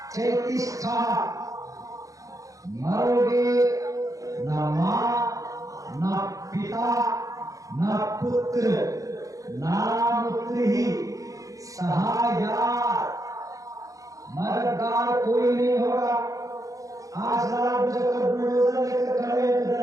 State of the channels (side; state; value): left; late; 0.16 ms